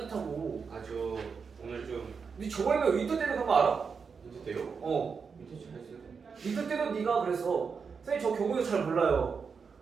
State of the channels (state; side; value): quieter; left; 5.7 dB